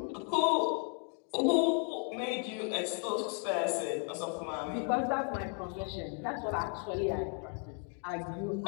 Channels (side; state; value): right; quieter; 39.2 dB